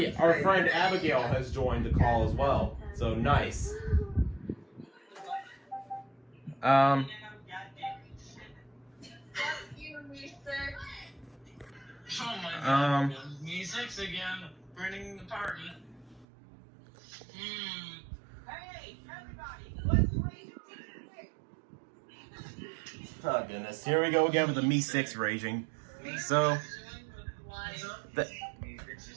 our friend Abigail has joined the call as well. So nice. Me6 again, running the party. Hey, everybody, let's raise Oh goodness, here we go again with the Me6 raging. So,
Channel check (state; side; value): drops out; left; at 16.2 s